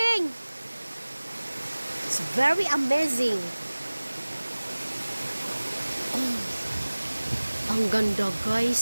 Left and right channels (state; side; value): inverted; both; correlation -1.00